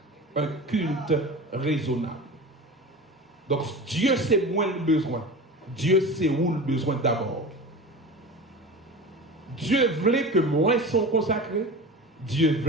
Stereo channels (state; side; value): normal; both; correlation 0.32